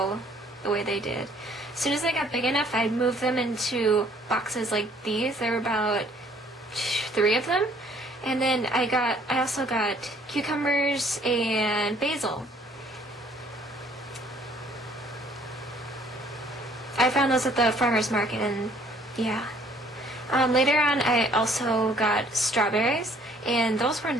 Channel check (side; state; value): both; normal; correlation 0.60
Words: the way they did. As soon as they got big enough, I'd move them into boxes like these. There were about 3 of them. And then I also got cucumbers and basil. I found those at the farmer's market, and yeah. Later on, I also got strawberries, and those were